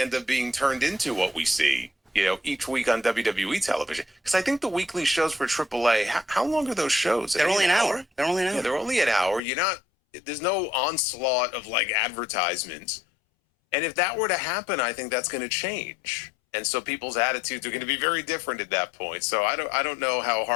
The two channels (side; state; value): right; drops out; at 9.4 s